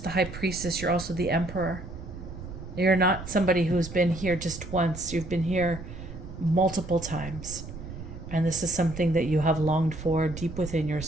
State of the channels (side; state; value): right; noise; rumble, 11 dB below the sound